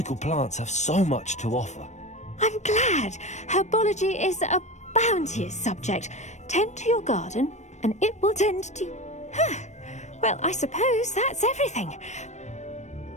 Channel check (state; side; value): late; right; 0.34 ms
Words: plants have so much to offer. I'm glad. Herbology is a bounteous subject. Tend to your garden, and it will tend to you. Huh. Well, I suppose that's everything.